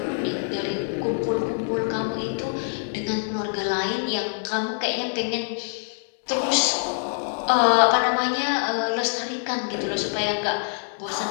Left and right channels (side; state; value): right; silent; 60 dB below the other